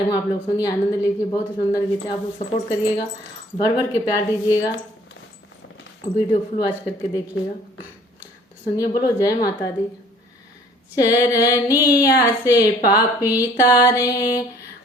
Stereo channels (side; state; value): both; normal; correlation 0.56